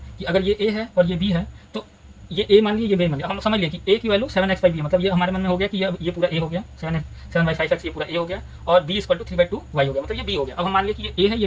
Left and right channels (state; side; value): identical; both; correlation 1.00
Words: कि अगर ये ए है और ये बी है तो ये ए मान लिया ये बी मान लिया। हम समझ लिया कि ए की वैल्यू 7x/b है, मतलब ये हमारे मन में हो गया कि ये पूरा ए हो गया, 7/5x ये पूरा ए हो गया, और b = 3/2 वाई हो गया, मतलब ये बी हो गया। अब हम मान लिया कि ये ए है ये